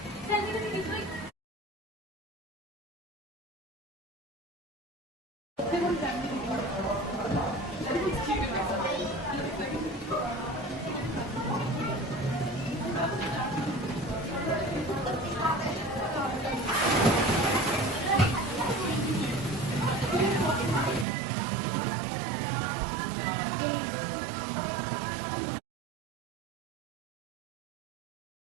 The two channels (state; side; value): drops out; left; at 21.1 s